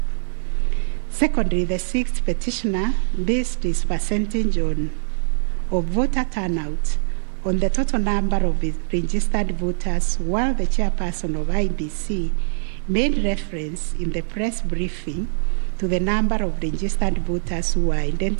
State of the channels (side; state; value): left; silent; 64 dB below the other